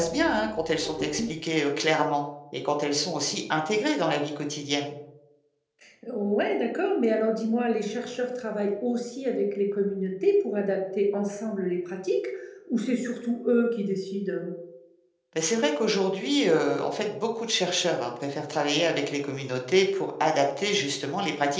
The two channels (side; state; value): both; identical; correlation 1.00